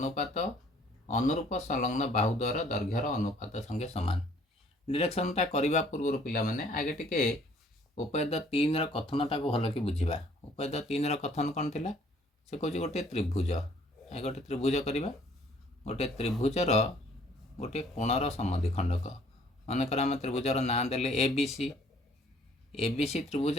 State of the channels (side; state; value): both; normal; correlation 0.59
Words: अनुरूप संलग्न बाहु द्वारा दैर्घ्यर अनुपात संगे समान। डिरेक्शनटा करने पूर्व पिला माने आगे टिके उपाध्याय 3 कथनटा को भल कि बुझा। उपाध्याय 3 कथन कौन थिला? से कहूँ गोटे त्रिभुज गोटे त्रिभुज करवा गोटे त्रिभुजर गोटे कोणर समद्विखंडक मनकर आम त्रिभुजर ना देले एबीसी। एबीसी